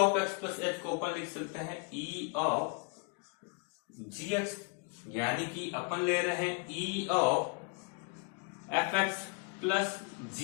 x plus h को अपन लिख सकते हैं e of gx, यानी कि अपन ले रहे हैं e of fx plus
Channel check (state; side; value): quieter; right; 34.4 dB